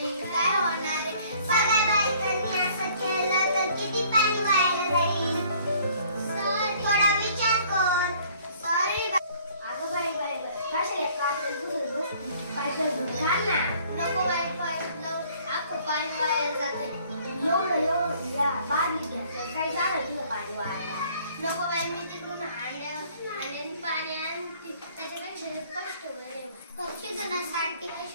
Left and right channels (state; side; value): inverted; both; correlation -0.57